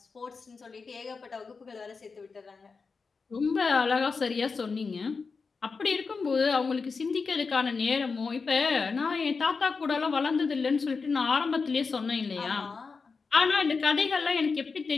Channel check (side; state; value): right; quieter; 4.8 dB